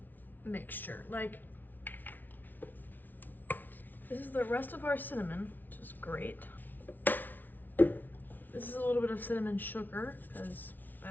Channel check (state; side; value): late; right; 0.085 ms